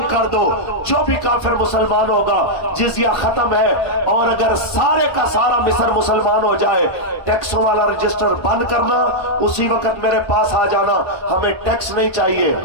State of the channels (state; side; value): late; right; 1.5 ms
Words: کر دو جو بھی کافر مسلمان ہوگا جزیہ ختم ہے، اور اگر سارے کا سارا مصر مسلمان ہو جائے ٹیکسوں والا رجسٹر بند کرنا، اسی وقت میرے پاس آ جانا، ہمیں ٹیکس نہیں چاہیے،